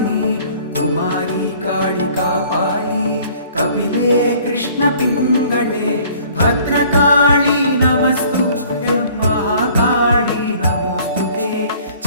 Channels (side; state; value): both; inverted; correlation -0.54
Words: కుమారి కాళికాపాలి కపిలే కృష్ణ పింగళే భద్రకాళి నమస్తుభ్యం మహాకాళి నమోస్తుతే